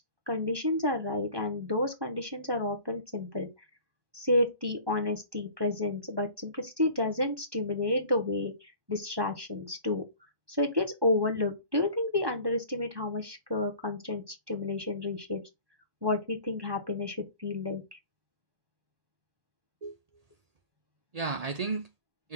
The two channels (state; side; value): late; left; 1.8 ms